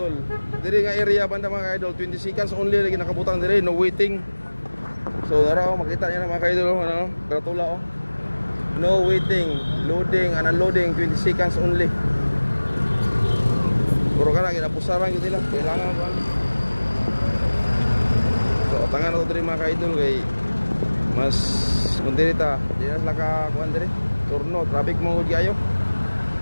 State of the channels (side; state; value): both; inverted; correlation -1.00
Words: Dire nga area banda mga ka-idol, 20 seconds only lagi nakabutang dire, no waiting. So, dara makita niyo na mga ka-idol ano, gratula oh. No waiting, loading and unloading 20 seconds only. Puro kana ginapusaran gyud nila, kailangan ko. So, tangan na to dire mga ka-idol kay mas kundirita, di na sila ka kuan dire. Turno, traffic mo gud kayo.